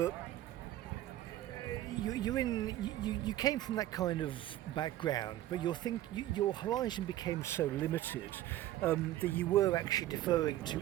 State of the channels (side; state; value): left; quieter; 14.0 dB